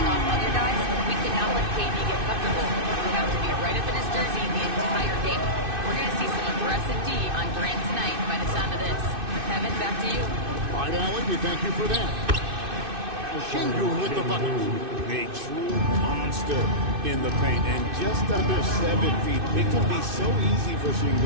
off other guys, we cannot let KD get comfortable. We have to be right up in his jersey the entire game. We're going to see some aggressive D on Durant tonight by the sound of this. Kevin, back to you. All right, Allen, we thank you for that. Şengün with the bucket. A true monster in the paint, and just under 7 feet. It can be so easy for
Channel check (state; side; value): late; left; 2.6 ms